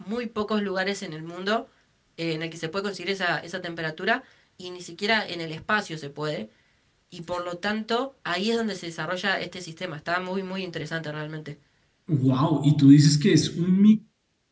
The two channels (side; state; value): both; identical; correlation 1.00